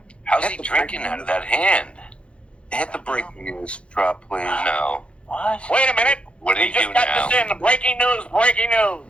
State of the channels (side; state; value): right; late; 0.059 ms